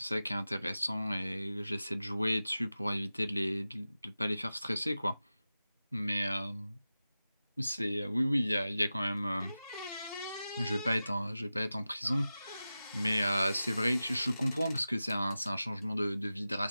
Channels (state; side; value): inverted; both; correlation -0.95